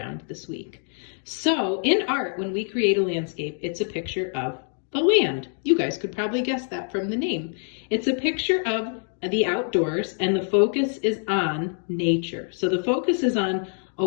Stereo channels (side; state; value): right; silent; 55 dB below the other